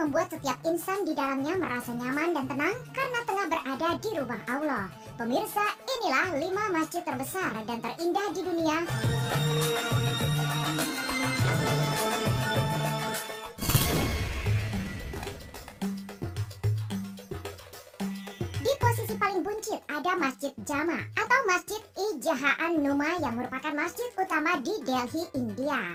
membuat setiap insan di dalamnya merasa nyaman dan tenang karena tengah berada di rumah Allah. Pemirsa, inilah 5 masjid terbesar dan terindah di dunia. Di posisi paling buncit ada Masjid Jama atau Masjid Ijahaan Numa yang merupakan masjid utama di Delhi,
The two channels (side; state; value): both; identical; correlation 1.00